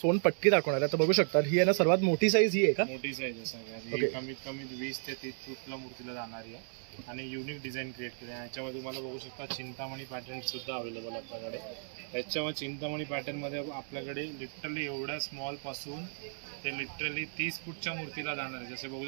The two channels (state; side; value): silent; left; digital silence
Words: दाखवणार आहे. तर बघू शकता ही आहे ना सर्वात मोठी साईज ही आहे का? मोठी साईज आहे सगळ्यात. ओके. कमीत कमी 20 ते 30 फूटला मूर्तीला जाणारी आहे आणि युनिक डिझाईन क्रिएट केली आहे. याच्यामध्ये तुम्हाला बघू शकता चिंतामणी पॅटर्न सुद्धा अवेलेबल आहे आपल्याकडे. याच्यावर चिंतामणी पॅटर्न मध्ये आपल्याकडे लिटरली एवढ्या स्मॉल पासून ते लिटरली 30 फूटच्या मूर्तीला जाणार आहे. जसे बघू